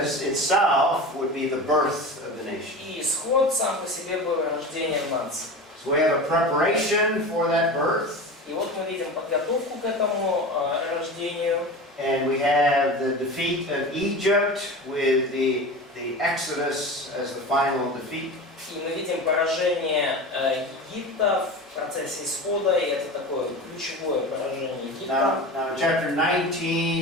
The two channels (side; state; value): both; normal; correlation 0.30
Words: itself would be the birth of the nation. И исход сам по себе был рождением нации. So we have a preparation for that birth. И вот мы видим подготовку к этому рождению. And we have the defeat of Egypt with the Exodus as the final defeat. И мы видим поражение Египта в процессе исхода, и это такое ключевое поражение Египта. Now, chapter